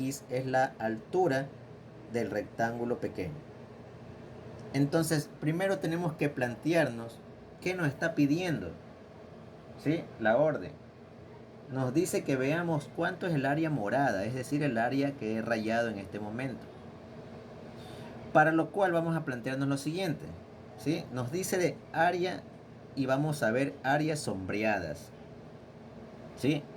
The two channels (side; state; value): both; identical; correlation 1.00